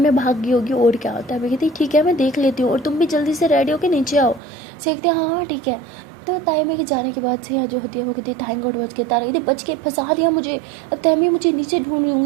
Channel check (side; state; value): left; drops out; at 4.4 s